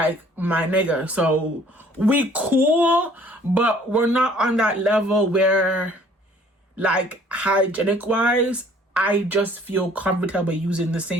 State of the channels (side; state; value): both; normal; correlation 0.56